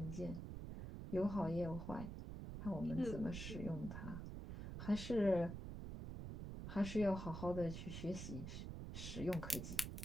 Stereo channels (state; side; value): noise; right; rumble, 6 dB below the sound